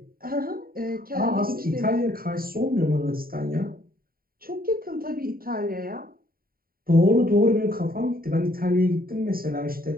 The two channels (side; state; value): left; late; 0.43 ms